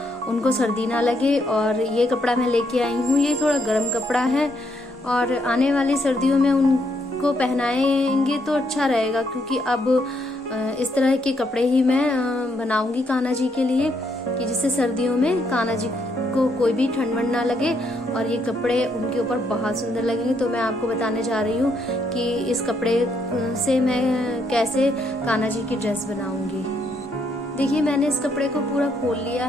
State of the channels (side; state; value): both; normal; correlation 0.74